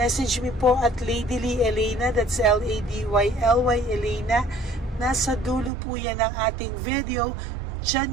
me po at Ladyly Elena, that's Ladyly Elena. Nasa dulo po yan ng ating video.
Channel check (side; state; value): left; drops out; at 5.7 s